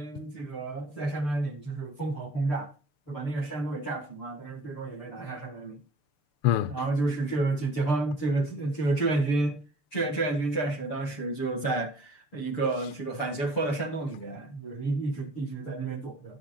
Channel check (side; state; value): right; late; 6.8 ms